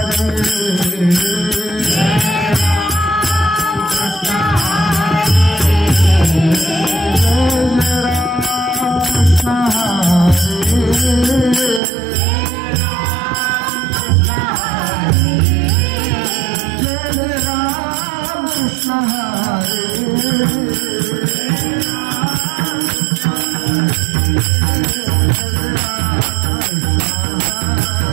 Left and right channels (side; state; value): left; drops out; at 11.8 s